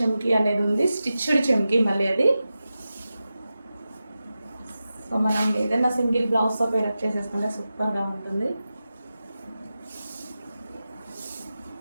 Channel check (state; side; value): inverted; both; correlation -0.93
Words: అనేది ఉంది, స్టిచ్డ్ చెమ్కీ మళ్ళీ అది. సో మనం ఏదైనా సింగిల్ బ్లౌజ్తో పేరప్ చేసేసుకుంటే సూపర్గా ఉంటుంది.